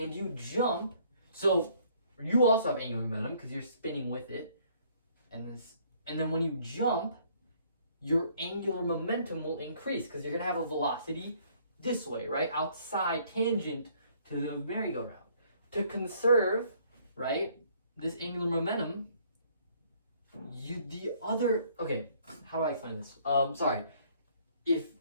you jump, so you also have angular momentum because you're spinning with it, and then when you jump, your angular momentum will increase because you're going to have a velocity this way, right? Outside tangent to the merry-go-round. To conserve, right, this angular momentum, how do I explain this? Sorry. If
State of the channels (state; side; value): inverted; both; correlation -0.62